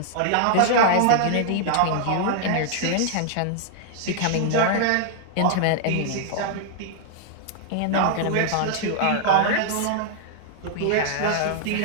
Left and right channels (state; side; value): different; both; correlation -0.01